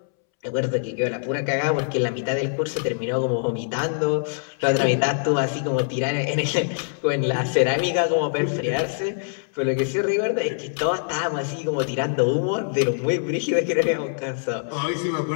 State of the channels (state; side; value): silent; right; 63 dB below the other